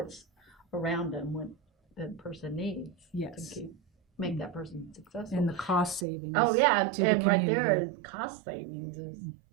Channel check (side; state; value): left; drops out; at 6.1 s